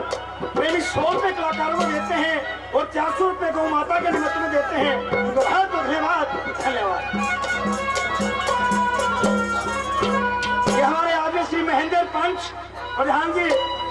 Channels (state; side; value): identical; both; correlation 1.00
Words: प्रेमी 100 रुपए कलाकारों को देते हैं और 400 रुपए गौ माता के निमित्त में देते हैं। तो बहुत धन्यवाद धन्यवाद। ये हमारे आगे श्री महेंद्र पंच प्रधान जी